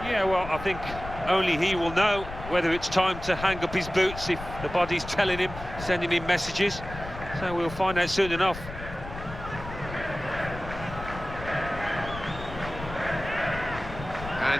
Yeah, well, I think only he will know whether it's time to hang up his boots, if the body's telling him, sending him messages. So we'll find out soon enough.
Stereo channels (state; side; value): noise; left; rumble, 11 dB below the sound